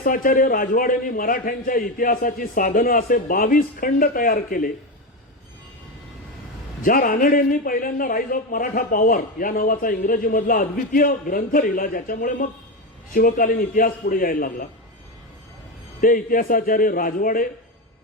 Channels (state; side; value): normal; both; correlation 0.14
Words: राजवाडेंनी मराठ्यांच्या इतिहासाची साधनं असे 22 खंड तयार केले, ज्या रानडेंनी पहिल्यांदा राईज ऑफ मराठा पॉवर या नावाचा इंग्रजीमधला अद्वितीय ग्रंथ लिहिला ज्याच्यामुळे मग शिवकालीन इतिहास पुढे यायला लागला, ते इतिहासाचार्य राजवाडे,